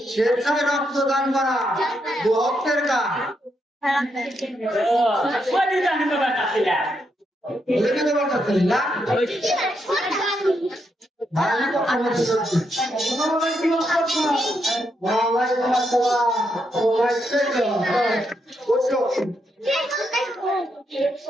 স্বেচ্ছায় রক্তদান করা ভক্তের কাজ ওই দুই জানি তো বাটা ছিল বুঝে দেবার কাছে না ভালো তো আমার ওয়ালাইকুম আসসালাম বসো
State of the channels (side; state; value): both; normal; correlation 0.80